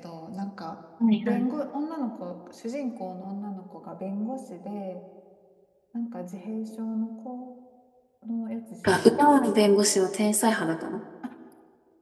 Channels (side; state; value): both; identical; correlation 1.00